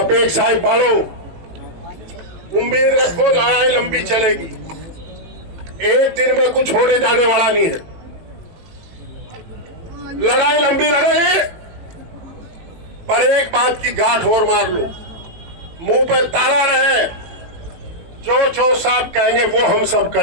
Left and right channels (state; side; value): late; left; 18 ms